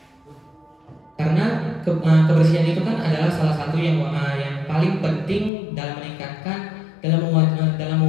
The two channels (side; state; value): right; drops out; at 5.5 s